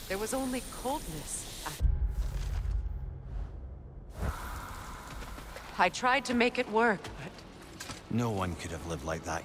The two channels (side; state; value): both; identical; correlation 1.00